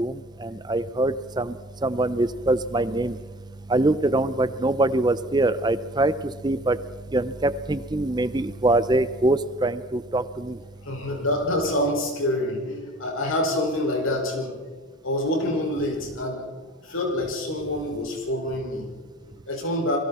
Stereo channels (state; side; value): normal; both; correlation 0.45